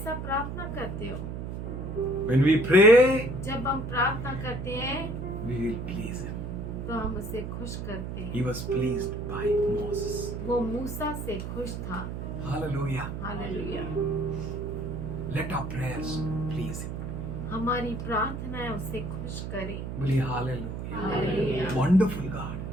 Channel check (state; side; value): noise; right; hum, 6 dB below the sound